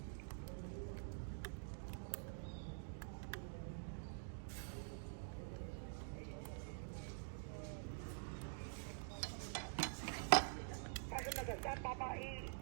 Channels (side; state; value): left; silent; digital silence